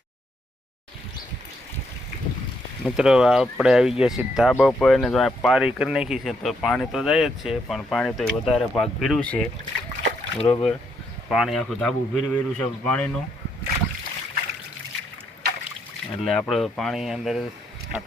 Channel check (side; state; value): both; normal; correlation 0.76